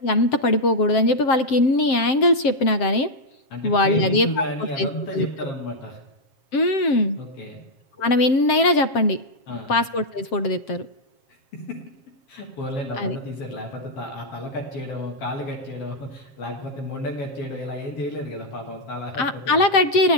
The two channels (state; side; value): late; right; 7.7 ms